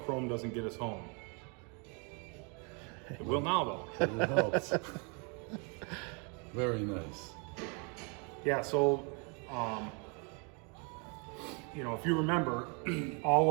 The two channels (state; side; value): quieter; left; 34.7 dB